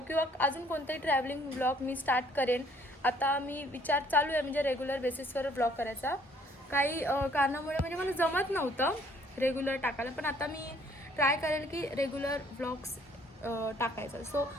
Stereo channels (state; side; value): normal; both; correlation 0.61